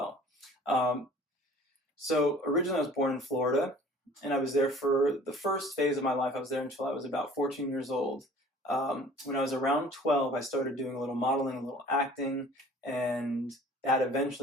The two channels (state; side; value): normal; both; correlation 0.49